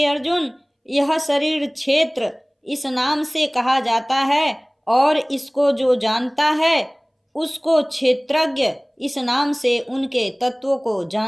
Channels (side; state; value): both; identical; correlation 1.00